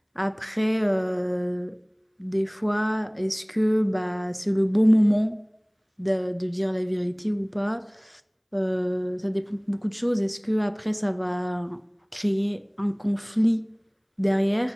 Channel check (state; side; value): identical; both; correlation 1.00